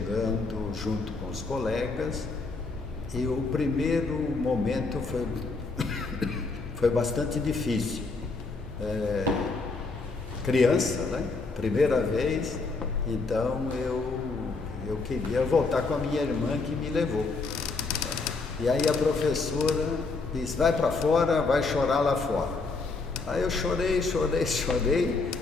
junto com os colegas, e o primeiro momento foi bastante difícil. Criança, né? Primeira vez, então eu queria voltar com a minha irmã que me levou. E aí a professora disse, vai para fora, vai chorar lá fora. Aí eu chorei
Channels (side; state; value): right; quieter; 3.9 dB